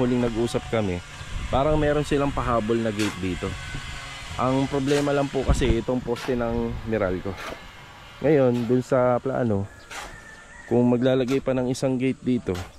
huling nag-usap kami, parang meron silang pahabol na gate dito. Ang problema lang po kasi itong poste ng Meralco. Ngayon dun sa plano, kung maglalagay pa ng isang gate dito,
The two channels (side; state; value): both; identical; correlation 1.00